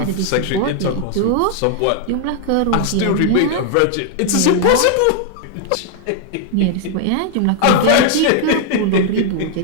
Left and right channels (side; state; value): both; different; correlation 0.00